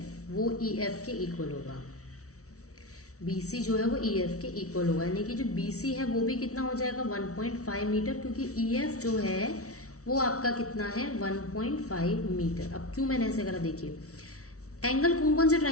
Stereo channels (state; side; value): late; right; 0.64 ms